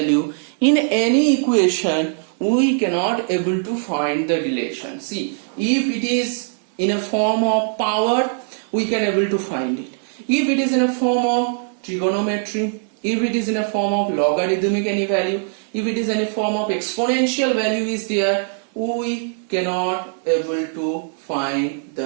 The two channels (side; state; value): left; silent; 62 dB below the other